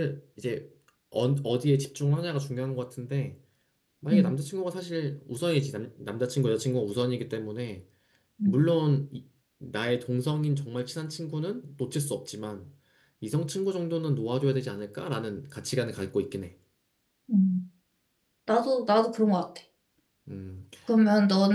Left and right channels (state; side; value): identical; both; correlation 1.00